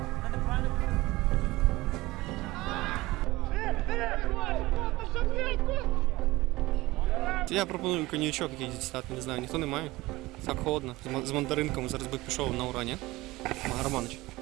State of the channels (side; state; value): left; quieter; 19.7 dB